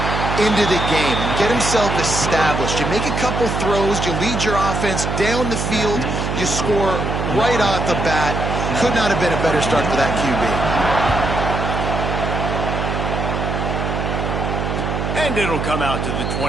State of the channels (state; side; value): noise; right; hum, 2 dB below the sound